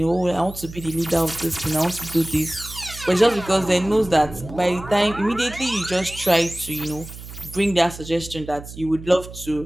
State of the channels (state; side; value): noise; right; hum, 14 dB below the sound